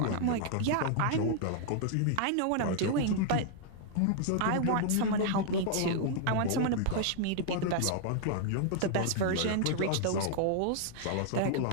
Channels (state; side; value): different; both; correlation 0.00